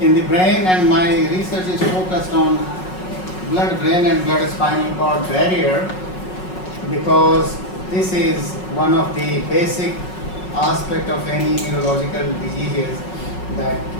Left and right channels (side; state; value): right; late; 5.4 ms